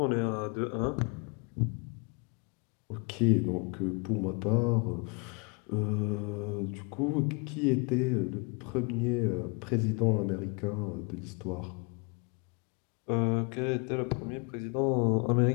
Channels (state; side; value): quieter; right; 32.5 dB